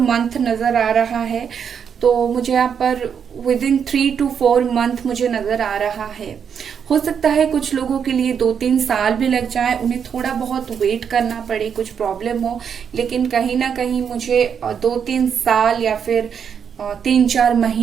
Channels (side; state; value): left; quieter; 7.4 dB